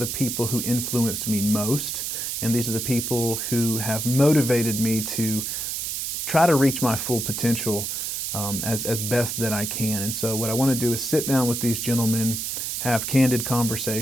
people who influenced me most, and these are the people who have motivated me to try to reach my full potential as best that I can. And so what I want to do is sit down with these gentlemen, have candid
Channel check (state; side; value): noise; right; hiss, 3 dB below the sound